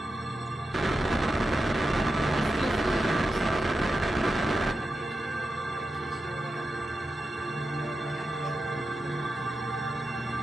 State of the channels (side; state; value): both; normal; correlation 0.90